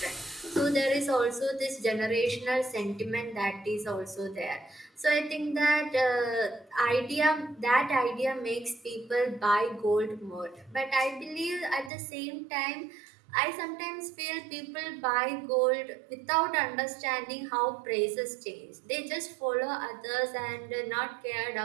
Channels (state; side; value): drops out; left; at 11.9 s